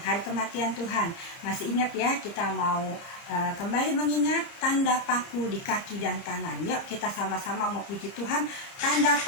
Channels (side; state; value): right; late; 30 ms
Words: hari kematian Tuhan. Masih ingat ya, kita mau kembali mengingat tanda paku di kaki dan tangan. Yuk kita sama-sama mau puji Tuhan, tanda